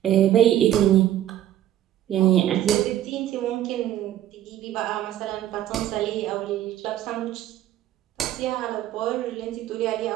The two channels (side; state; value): left; quieter; 12.3 dB